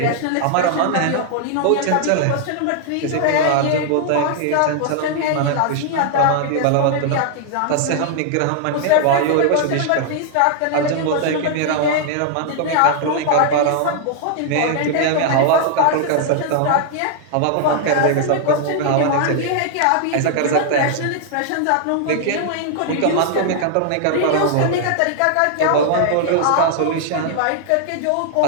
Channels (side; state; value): both; different; correlation -0.01